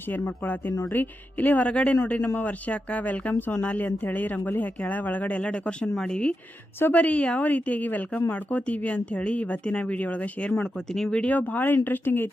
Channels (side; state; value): both; normal; correlation 0.88